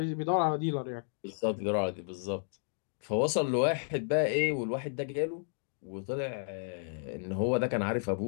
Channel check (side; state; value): right; silent; digital silence